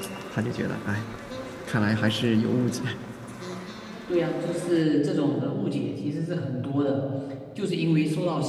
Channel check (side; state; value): both; identical; correlation 1.00